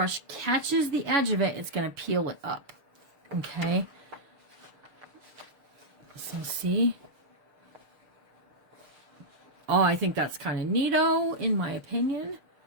catches the edge of it, it's going to peel it up. Okay? So see? Oh, I think that's kind of neato, in my opinion.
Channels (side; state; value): left; late; 6.6 ms